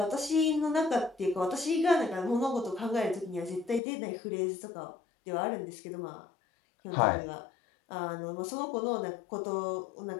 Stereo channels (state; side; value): drops out; right; at 3.8 s